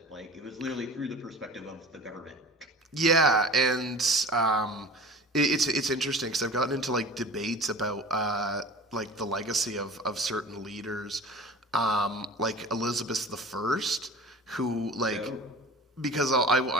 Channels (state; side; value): normal; both; correlation 0.39